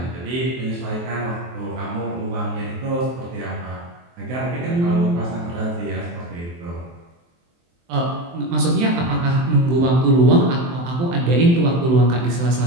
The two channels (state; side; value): late; left; 23 ms